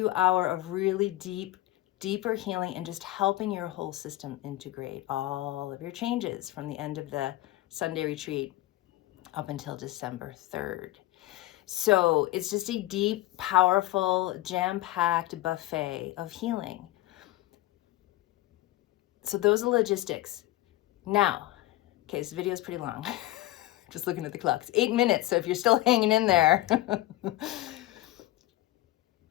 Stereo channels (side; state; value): right; quieter; 16.8 dB